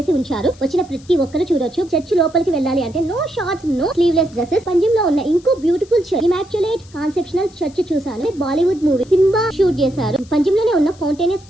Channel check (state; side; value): noise; left; hiss, 26 dB below the sound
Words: ఉంచారు. వచ్చిన ప్రతి ఒక్కరు చూడొచ్చు. చర్చ్ లోపలికి వెళ్ళాలి అంటే no shorts, no sleeveless dresses. Panjim లో ఉన్న ఇంకో beautiful church immaculate conceptional church చూసాను. బాలీవుడ్ మూవీ సింబా షూట్ చేశారు. పంజిమ్ లోనే ఉన్న ఫౌంటైనస్